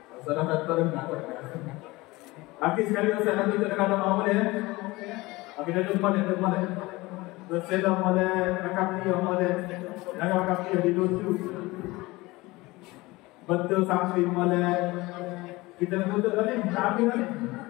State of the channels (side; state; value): right; quieter; 21.3 dB